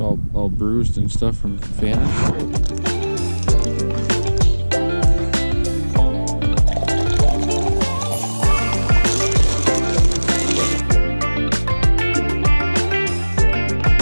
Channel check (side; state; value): both; inverted; correlation -1.00